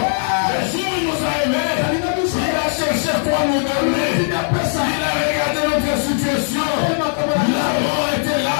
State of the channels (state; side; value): silent; right; digital silence